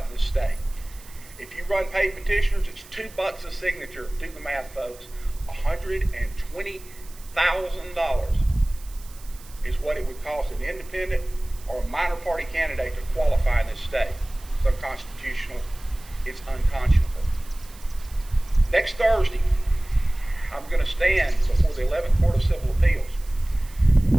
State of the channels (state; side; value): noise; right; hiss, 21 dB below the sound